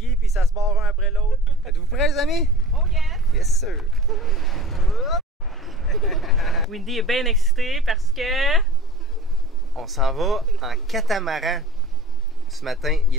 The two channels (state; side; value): normal; both; correlation 0.43